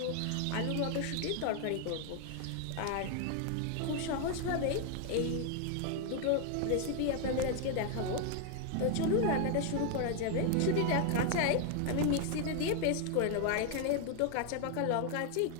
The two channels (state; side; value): different; both; correlation 0.00